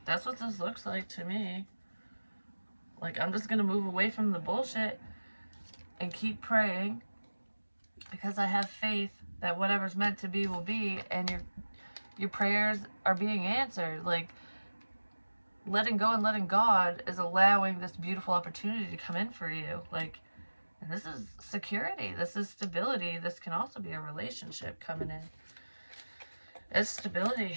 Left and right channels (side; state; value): both; inverted; correlation -1.00